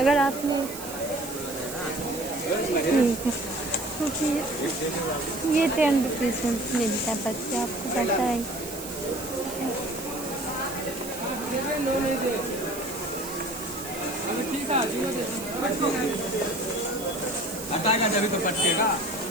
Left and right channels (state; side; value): noise; right; hiss, 11 dB below the sound